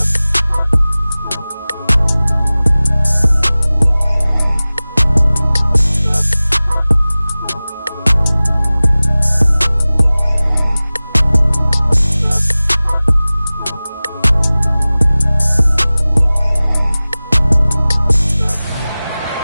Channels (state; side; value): inverted; both; correlation -0.98